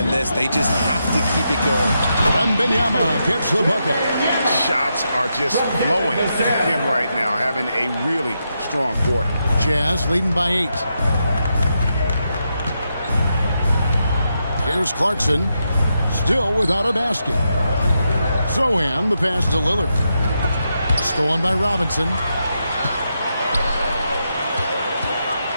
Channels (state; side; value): inverted; both; correlation -0.84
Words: this. They just have to keep it going. Wembanyama gets the bucket. Shots are just flowing at him right now, having a really strong quarter. Jazz leading by 8. Here's Clarkson, still without a basket. Sohan, the pass to Lillard. Stolen by Robinson.